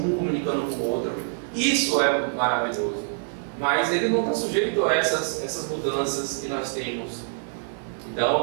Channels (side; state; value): left; silent; digital silence